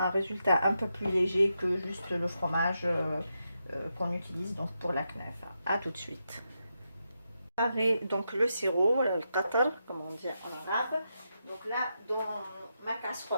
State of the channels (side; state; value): both; inverted; correlation -0.85